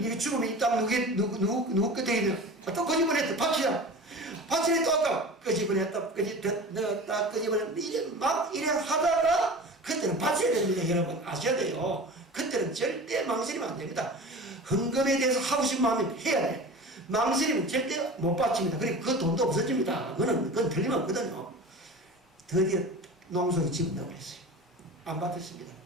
죽으면 이 땅 누구 끝에 있는 또 끄집어냈다. 바치라. 바치라 또 아까 끄집어냈다. 넣었다. 끄집어냈다. 이래 하다가 그때는 바쳐야 됩니다. 여러분 아셔야 돼요. 그때는 절대 망설이면 안 됩니다. 헌금에 대해서 하고 싶은 마음이 해야 돼. 망설이면 절대 못 바칩니다. 그리고 그 돈도 없어집니다. 그건 틀림없거든요. 드디어 농소에 집을 넣어버렸어요. 안 받았습니다.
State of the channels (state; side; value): normal; both; correlation 0.35